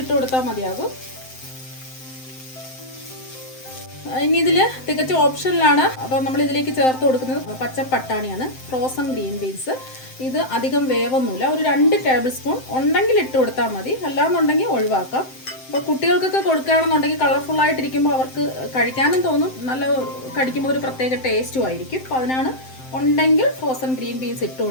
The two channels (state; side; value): late; right; 7.7 ms